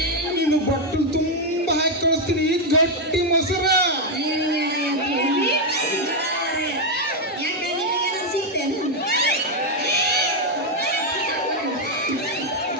ನೀನು ಬಟ್ಟಲು ತುಂಬ ಹಾಕಿ ಕಳಿಸ್ತೀನಿ. ಗಟ್ಟಿ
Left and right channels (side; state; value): both; normal; correlation 0.02